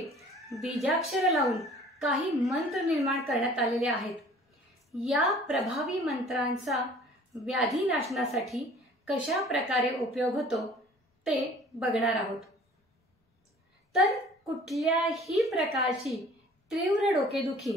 बीजाक्षर लावून काही मंत्र निर्माण करण्यात आलेले आहेत। या प्रभावी मंत्रांचा व्याधी नाशनासाठी कशा प्रकारे उपयोग होतो ते बघणार आहोत। तर कुठल्याही प्रकारची तीव्र डोकेदुखी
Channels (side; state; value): both; normal; correlation 0.50